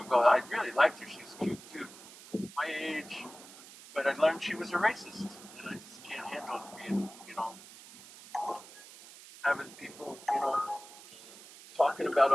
ago. I really liked her. She's cute too, my age. But I learned she was a racist, and I just can't handle being, having people, talking about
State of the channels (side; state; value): right; noise; hiss, 18 dB below the sound